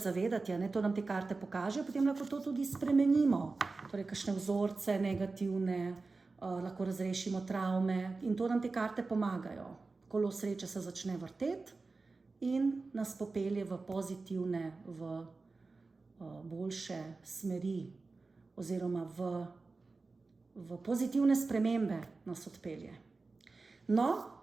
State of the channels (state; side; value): quieter; left; 3.8 dB